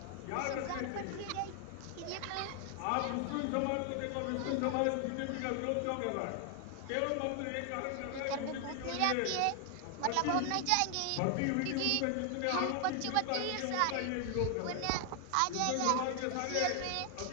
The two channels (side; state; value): both; different; correlation 0.00